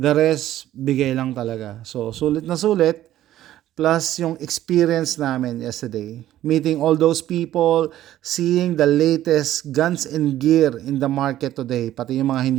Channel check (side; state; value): left; quieter; 13.2 dB